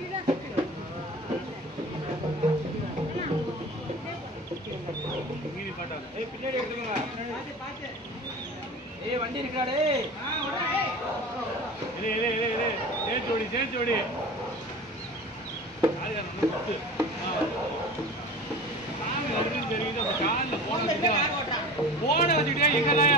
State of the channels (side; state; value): both; normal; correlation 0.36